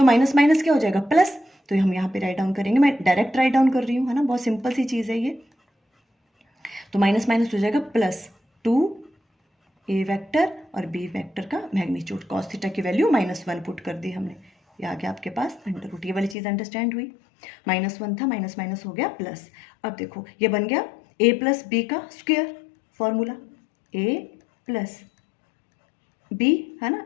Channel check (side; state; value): right; drops out; at 16.4 s